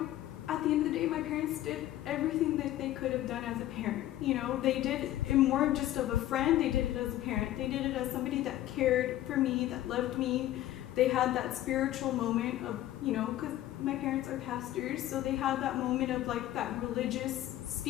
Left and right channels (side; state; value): right; quieter; 13.8 dB